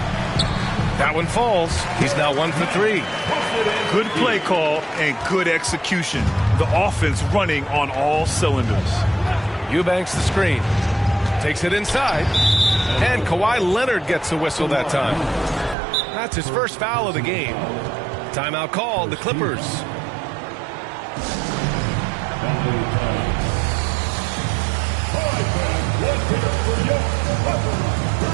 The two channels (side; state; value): left; drops out; at 15.8 s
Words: That one falls. He's now 1 for 3. Good play call and good execution. The offense running on all cylinders. Eubanks the screen. Takes it inside. And Kawhi Leonard gets the whistle that time. That's his first foul of the game. Timeout called, the Clippers.